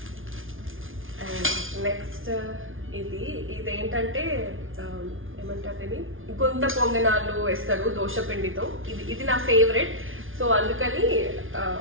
అండ్ నెక్స్ట్ ఇదేంటంటే ఏమంటారు, ఇది గుంత పొంగనాలు వేస్తారు దోశ పిండితో. ఇది నా ఫేవరెట్. సో అందుకని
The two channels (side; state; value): left; late; 0.58 ms